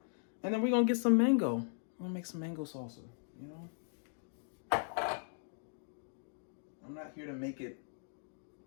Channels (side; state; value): right; silent; digital silence